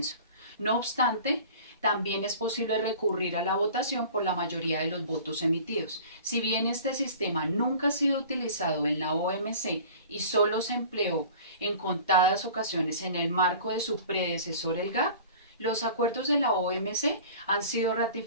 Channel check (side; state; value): both; inverted; correlation -0.43